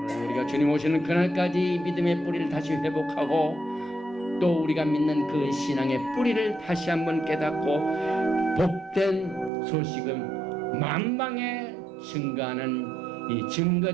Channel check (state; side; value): drops out; left; at 9.5 s